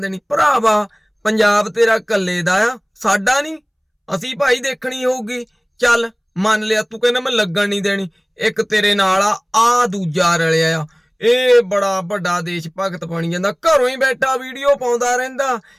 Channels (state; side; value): identical; both; correlation 1.00